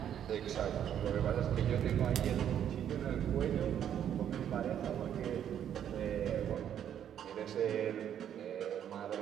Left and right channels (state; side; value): quieter; left; 9.7 dB